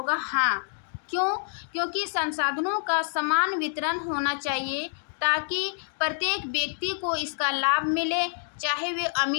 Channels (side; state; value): right; silent; digital silence